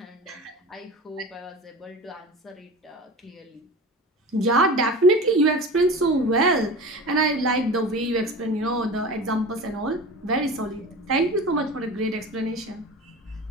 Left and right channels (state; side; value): normal; both; correlation 0.33